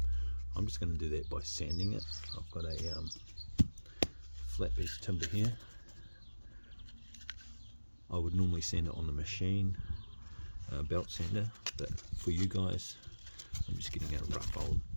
I'm just going to do that by sanding it. I've got a flat piece of timber here. I would normally sand it on the machine, belt sander, but for you guys, I'm just getting a rough old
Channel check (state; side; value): inverted; both; correlation -1.00